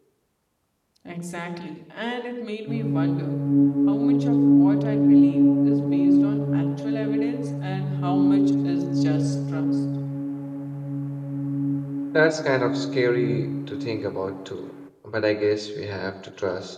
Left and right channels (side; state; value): both; identical; correlation 1.00